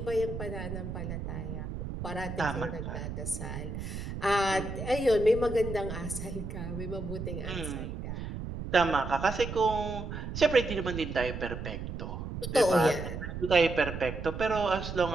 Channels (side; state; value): right; noise; rumble, 6 dB below the sound